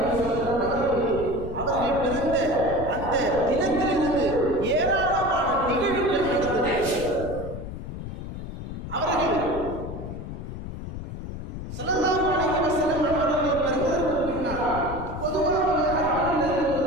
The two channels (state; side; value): noise; left; rumble, 8 dB below the sound